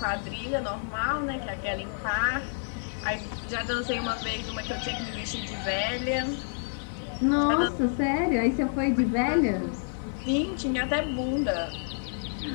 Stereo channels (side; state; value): right; silent; digital silence